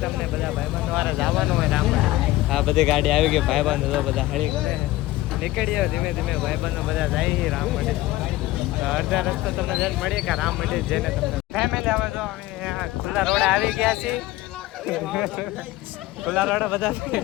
તમને બધા ભાઈબંધો વારે જવાનું હોય રામ. આ બધી ગાડી આવી ગઈ. ભાઈબંધો તો બધા હળી કરે નીકળી આવે ધીમે ધીમે. ભાઈબંધો બધા જાય રામ માટે. અડધા રસ્તો તમને જઈને મળીએ કે રામ માટે જઈને તમને ફેમિલી આવે. તો અમે ખુલ્લા રોડે આવી ગયા છીએ. ખુલ્લા રોડે બધા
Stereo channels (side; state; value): right; quieter; 17.2 dB